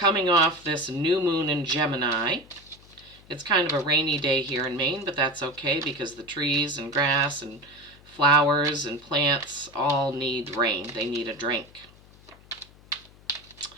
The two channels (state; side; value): noise; left; hum, 25 dB below the sound